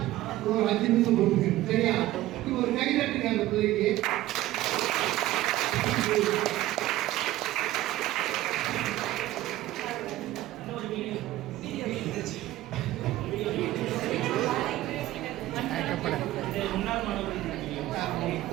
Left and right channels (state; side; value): quieter; left; 15.7 dB